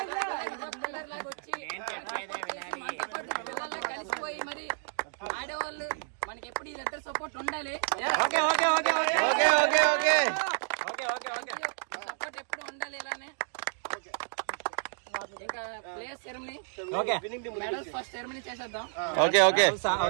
పిల్లర్ లాగా వచ్చి మనతో పిల్లల్లా కలిసిపోయి మరి ఆడేవాళ్ళు మనకి ఎప్పుడు ఇద్దరు సపోర్ట్ ఉండాలి. సపోర్ట్ ఎప్పుడు ఉండాలి. ఇలానే ఇంకా players ceremony medals first ceremony చేసేద్దాం. ఓకే ఓకే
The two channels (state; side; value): silent; left; digital silence